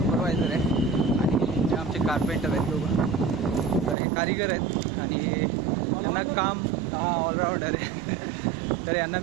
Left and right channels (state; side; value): drops out; left; at 4.0 s